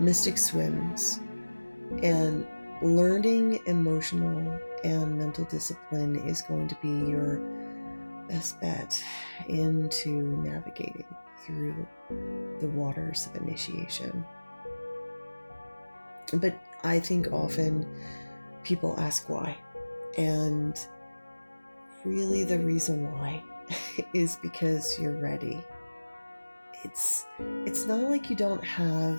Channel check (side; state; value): both; inverted; correlation -1.00